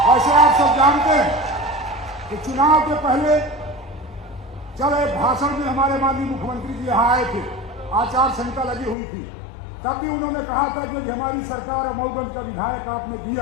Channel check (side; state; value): right; drops out; at 9.0 s